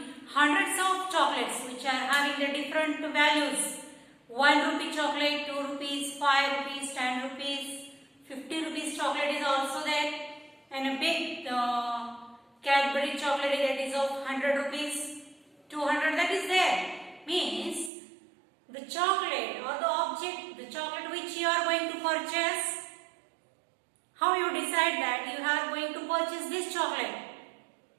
hundreds of chocolates which are having the different values. 1 rupee chocolate, 2 rupees, 5 rupees, 10 rupees, 50 rupees chocolate is also there, and a big Cadbury chocolate that is of 100 rupees, 200, that is there. Means the chocolate or the object, the chocolate which you are going to purchase, how you decide that you are going to purchase this chocolate?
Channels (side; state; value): left; drops out; at 17.9 s